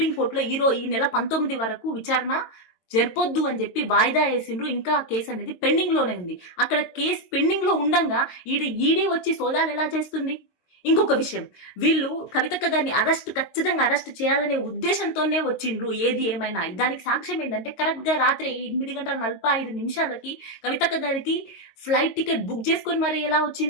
ఈ నెల 19 వరకు విచారణ జరపొద్దు అని చెప్పి వాయిదా వేసిండ్రు. ఇంకా కేసు అనేది పెండింగ్ లోనే ఉంది. అక్కడ కేసు పెండింగ్ లో ఉండంగా ఈడీ వచ్చి సోదాలు ఎలా చేస్తుంది? ఇంకొక విషయం, వీళ్ళు కవితక్క గారిని ఖచ్చితంగా అరెస్ట్ చేయాలనే ఉద్దేశంతోనే వచ్చిండ్రు. ఏది ఏమైనా దానికి సాక్ష్యం ఏంటంటే, కరెక్ట్ గా రాత్రి 8:45 కవితక్క గారికి ఫ్లైట్ టికెట్ బుక్ చేసుకొని మరి ఎలా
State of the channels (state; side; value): late; right; 22 ms